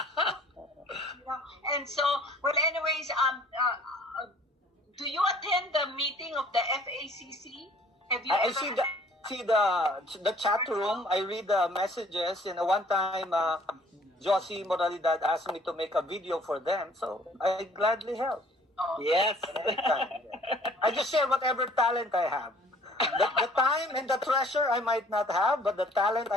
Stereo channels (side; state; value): both; normal; correlation 0.55